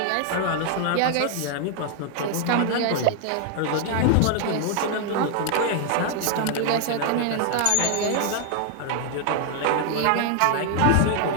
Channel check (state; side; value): different; both; correlation 0.00